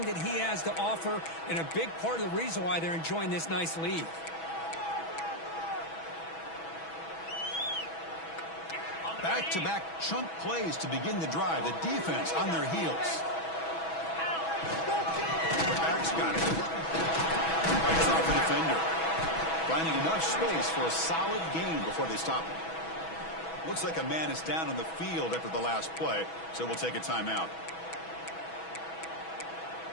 that he has to offer, and a big part of the reason why they're enjoying this nice lead. Back-to-back chunk plays to begin the drive. The defense on their heels. The back's got it. Fights off the defender. Finding enough space for a solid gain before they stop him. Looks like a man is down on the field after the last play, so we'll take a timeout.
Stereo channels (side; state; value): right; late; 6.1 ms